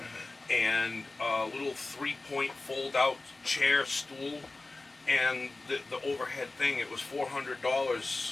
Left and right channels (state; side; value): quieter; right; 3.3 dB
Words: and a little 3-point fold-out chair stool and the overhead thing, it was